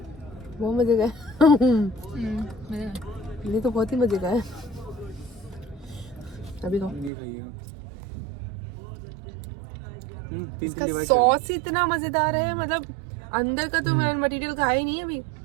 बहुत मज़े का। ये तो बहुत ही मज़े का है। अभी खाओ। इसका सॉस इतना मजेदार है, मतलब अंदर का तो मैं मटेरियल खाया ही नहीं है अभी।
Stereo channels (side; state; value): left; drops out; at 7.1 s